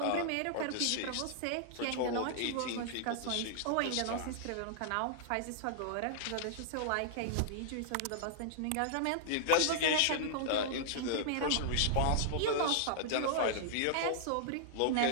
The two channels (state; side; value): different; both; correlation -0.01